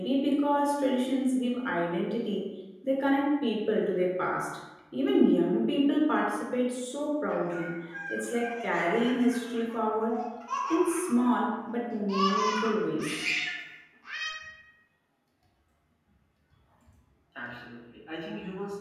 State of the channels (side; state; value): both; identical; correlation 1.00